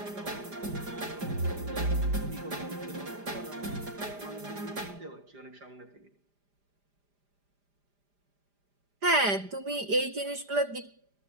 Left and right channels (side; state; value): left; late; 5.0 ms